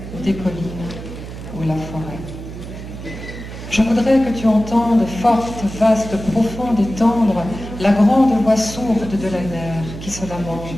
ou des collines, ou la forêt. Je voudrais que tu entendes forte, vaste, profonde et tendre la grande voix sourde de la mer qui se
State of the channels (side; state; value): right; noise; hum, 11 dB below the sound